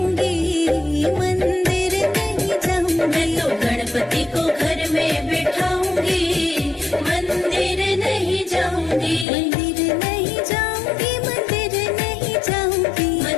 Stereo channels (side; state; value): right; drops out; at 9.2 s